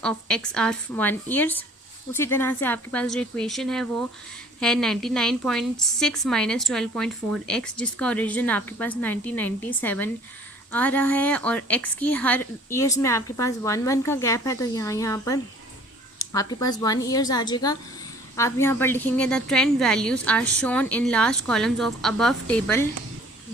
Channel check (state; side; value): normal; both; correlation 0.53